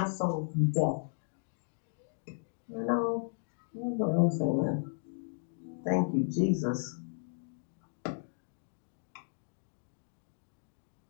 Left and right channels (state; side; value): silent; right; digital silence